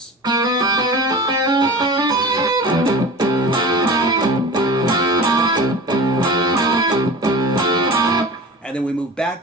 And then we move back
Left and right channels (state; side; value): normal; both; correlation 0.35